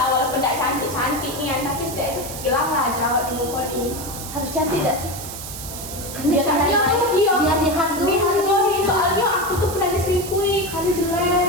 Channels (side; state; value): right; noise; hiss, 10 dB below the sound